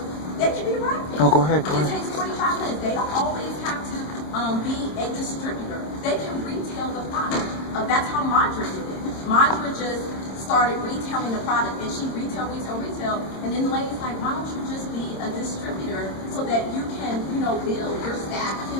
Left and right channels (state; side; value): late; right; 26 ms